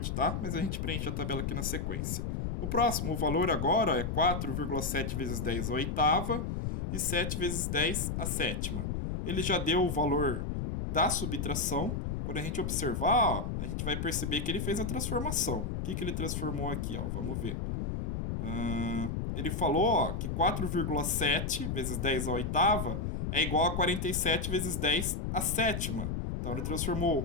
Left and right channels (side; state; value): left; noise; rumble, 2 dB below the sound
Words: tá? Mas a gente preenche a tabela aqui na sequência. O próximo, o valor agora é 4,7 vezes 10 a oitava e 7 vezes 10 a sétima. Ele já deu o valor da subtração. Quando a gente observar, a gente vai perceber que ele fez a transformação. O que ele transformou aqui? Vamos ver. Ele falou que 4,7 vezes 10 a oitava é igual a 47 vezes 10 a sétima. Então ele